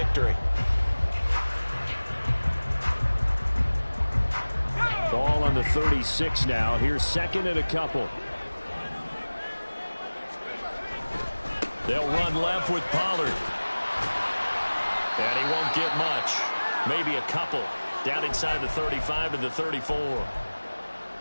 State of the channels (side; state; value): both; inverted; correlation -1.00